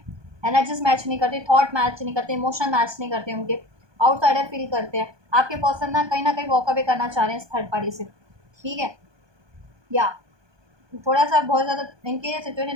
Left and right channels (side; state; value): left; late; 1.2 ms